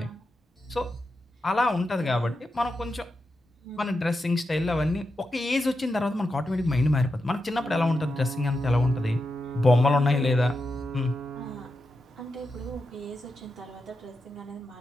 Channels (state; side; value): normal; both; correlation 0.88